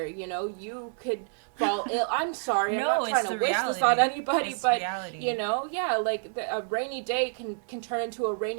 you know, you could fall ill. I'm sorry, I'm not trying to wish this on anybody, but reality. You know, like a rainy day can turn into a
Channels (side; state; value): left; silent; digital silence